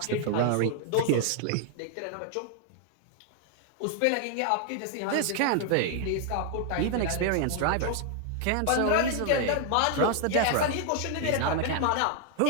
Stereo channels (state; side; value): different; both; correlation 0.00